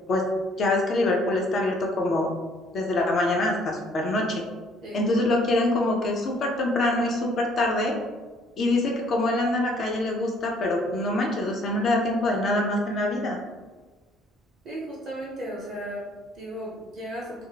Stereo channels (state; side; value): normal; both; correlation 0.62